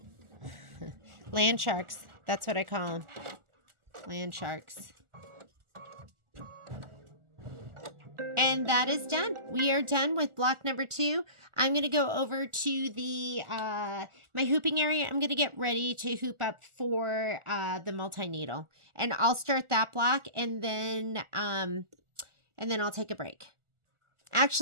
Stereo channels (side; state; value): left; late; 1.4 ms